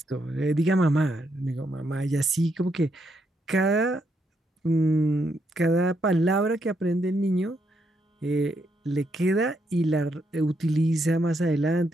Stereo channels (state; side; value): normal; both; correlation 0.78